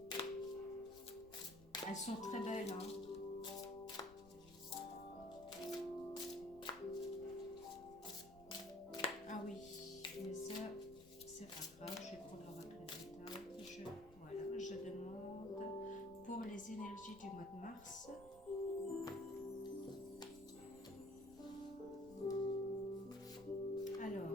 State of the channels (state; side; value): noise; left; rumble, 20 dB below the sound